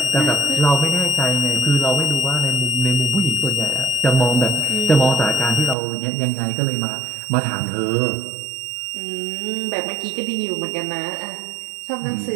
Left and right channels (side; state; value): left; drops out; at 5.8 s